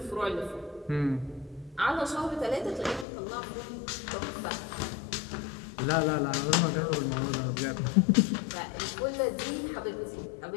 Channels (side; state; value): right; drops out; at 3.1 s